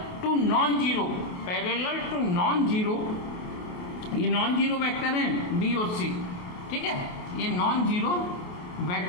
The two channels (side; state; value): right; late; 28 ms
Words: to non zero, parallel to non zero, ये नॉन जीरो वेक्टर है बी और सी। ठीक है, ये नॉन जीरो